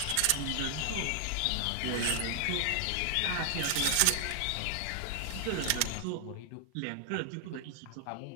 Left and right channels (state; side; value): different; both; correlation 0.00